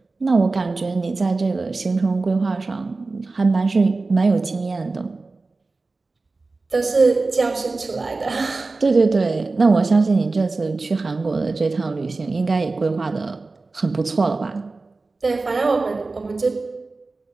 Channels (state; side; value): quieter; left; 3.6 dB